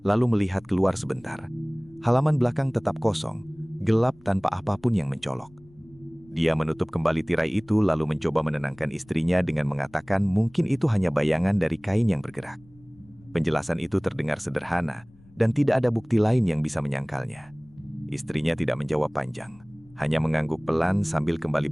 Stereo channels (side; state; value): left; noise; rumble, 27 dB below the sound